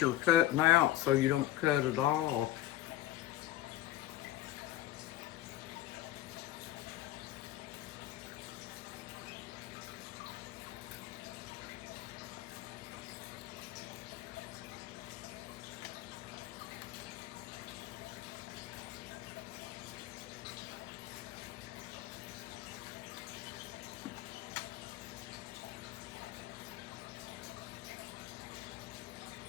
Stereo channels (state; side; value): quieter; right; 14.5 dB